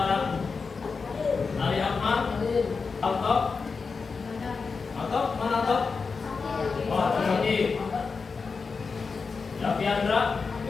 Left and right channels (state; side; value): quieter; right; 4.9 dB